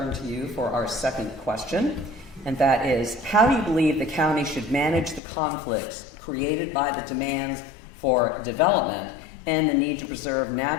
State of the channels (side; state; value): right; drops out; at 5.2 s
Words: to you for our second question, and that is, how do you believe the county should manage the conflicts created by the demands for development and the need to preserve